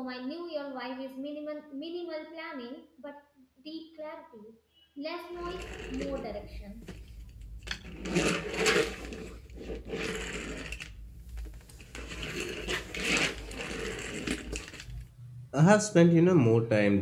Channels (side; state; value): both; identical; correlation 1.00